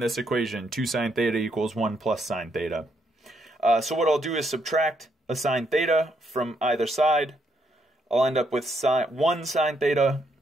this equation. 2 sine theta equals 1 plus sine theta. So what I'll do is subtract a sine theta from either side. I'll end up with 1 sine theta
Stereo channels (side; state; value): both; normal; correlation 0.75